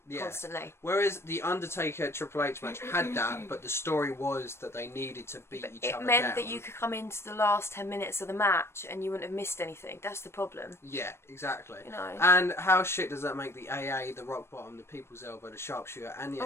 constantly. Whereas the Undertaker Triple H match had that, but the story was that they needed to beat each other down. It meant that you could come into the last 10 minutes of the match and you wouldn't have missed anything. That's the problem. Yeah, exactly. You know. And how shit does that make the AA, the rock bottom, the people's elbow, the sharpshooter, and the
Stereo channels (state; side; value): late; right; 0.12 ms